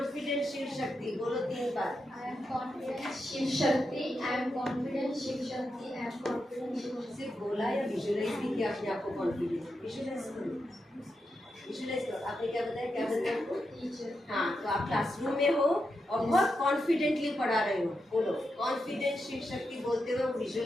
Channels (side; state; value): both; normal; correlation 0.86